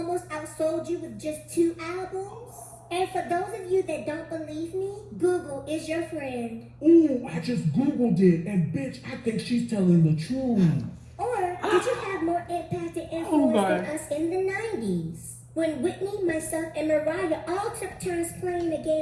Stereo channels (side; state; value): both; identical; correlation 1.00